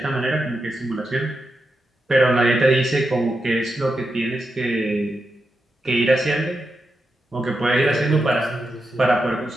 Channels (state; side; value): normal; both; correlation 0.87